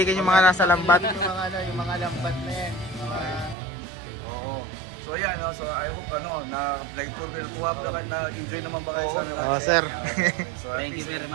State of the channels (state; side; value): drops out; left; at 3.6 s